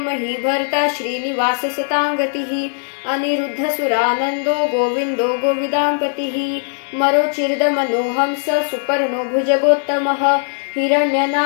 श्रीनिवास सतांगतिः अनिरुद्धसुरानन्दो गोविन्दो गोविदाम्पतिः मरोचिर्दमनोहंस सुपर्णो भुजगोत्तमः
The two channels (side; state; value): right; silent; 62 dB below the other